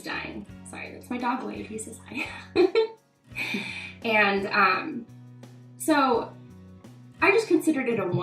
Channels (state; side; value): identical; both; correlation 1.00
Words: dying. Sorry, that's my dog Wade, he says hi. And so I just considered it a